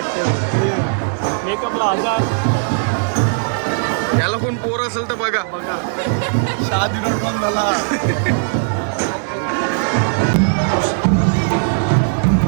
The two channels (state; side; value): silent; left; 67 dB below the other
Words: मेकअपला 1000. त्याला कोण पोर असेल तर बघा.